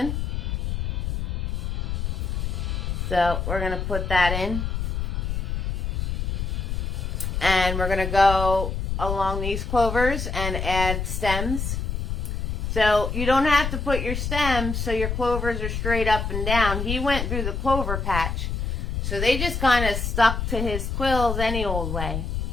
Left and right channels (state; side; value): noise; left; rumble, 2 dB below the sound